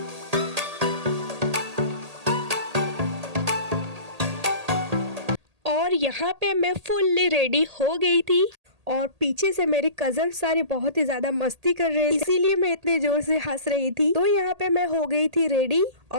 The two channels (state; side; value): late; left; 1.8 ms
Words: और यहाँ पे मैं फुल्ली रेडी हो गई थी और पीछे से मेरे कजन सारे बहुत ही ज्यादा मस्ती कर रहे थे, इसीलिए मैं इतने जोर से हंस रही थी। तो यहाँ पे मैं हो गई थी रेडी